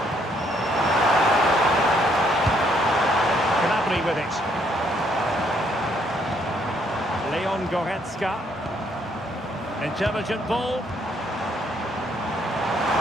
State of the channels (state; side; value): normal; both; correlation 0.69